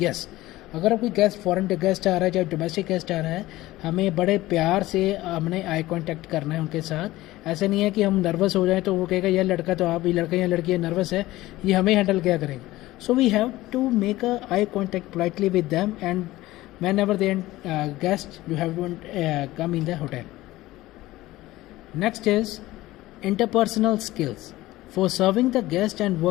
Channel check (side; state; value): right; quieter; 17.3 dB